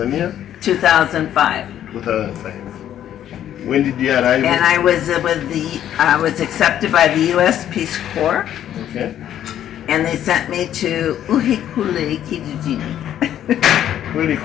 2005. 2005. When did you arrive? And I was I was accepted by the U.S. Peace Corps. Okay. And they sent me to Uhikule Kijijini.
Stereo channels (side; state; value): right; quieter; 10.9 dB